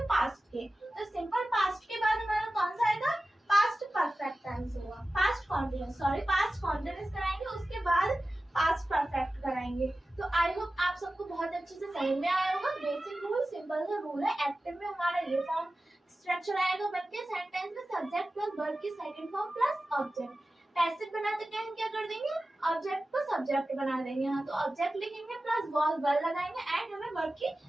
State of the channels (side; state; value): both; normal; correlation 0.95